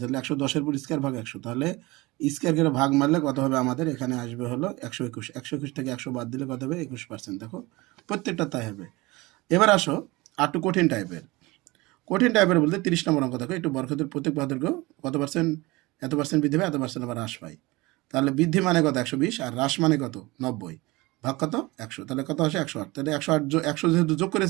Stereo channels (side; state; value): left; quieter; 22.1 dB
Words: 110-এর উপর স্কোয়ার ভাগ 100, তাহলে স্কোয়ার করে ভাগ মারলে কত হবে? আমাদের এখানে আসবে হলো 121। 121 থেকে 100 বাদ দিলে কত হবে? 21%। দেখো প্রত্যেকটা তাই হবে। এবার আসো আর একটু কঠিন টাইপের বলতে 30 নম্বর অঙ্ক। দেখো একটু বর্গক্ষেত্রের প্রত্যেক বাহুর দৈর্ঘ্য কত পার্সেন্ট, এত পার্সেন্ট বৃদ্ধি পায়, এত পার্সেন্ট আবার হ্রাস পায়। তাহলে বৃদ্ধি মানে কত? 120, আর হ্রাস মানে কত? 90। ভাগ কত? 100। তাহলে কত আসে? 108। তাহলে 100 যেহেতু যোগ